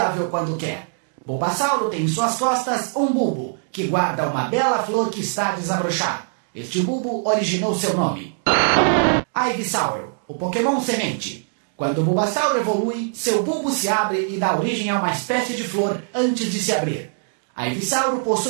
quando quer. Bulbasauro tem em suas costas um bulbo, que guarda uma bela flor que está a desabrochar. Este bulbo originou seu nome. Ivysaur, o Pokémon semente. Quando o Bulbasauro evolui, seu bulbo se abre e dá origem a uma espécie de flor antes de se abrir. Ivysaur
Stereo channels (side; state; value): left; silent; digital silence